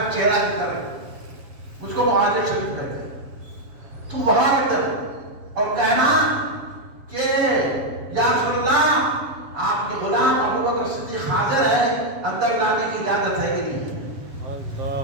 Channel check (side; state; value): left; late; 7.3 ms